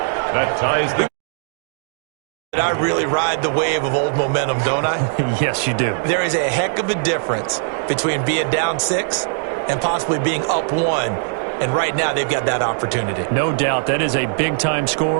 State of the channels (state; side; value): silent; left; digital silence